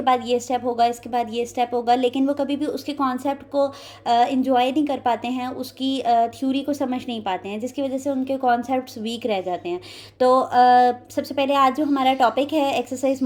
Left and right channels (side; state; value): both; identical; correlation 1.00